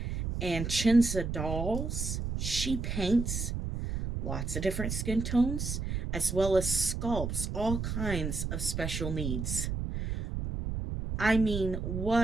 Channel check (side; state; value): right; noise; rumble, 3 dB below the sound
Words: And Chinza Dolls, she paints lots of different skin tones as well as sculpts all kinds of special needs. I mean,